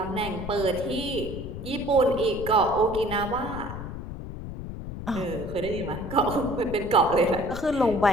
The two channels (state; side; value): noise; left; rumble, 9 dB below the sound